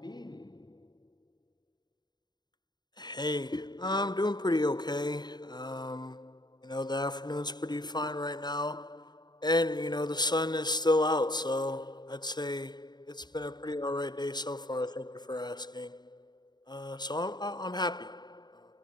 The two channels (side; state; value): right; late; 0.21 ms